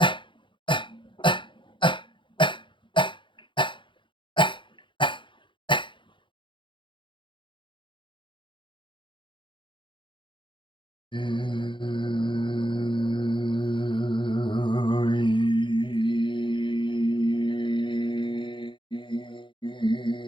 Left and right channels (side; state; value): right; late; 0.24 ms